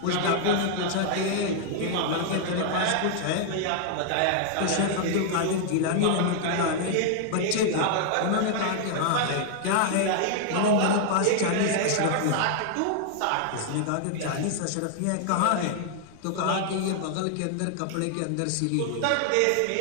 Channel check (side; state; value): both; different; correlation 0.00